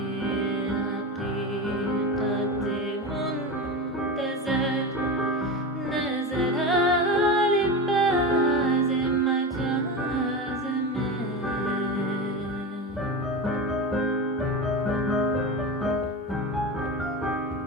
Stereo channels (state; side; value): normal; both; correlation 0.23